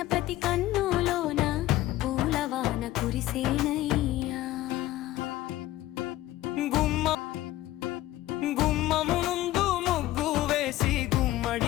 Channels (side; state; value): right; quieter; 15.6 dB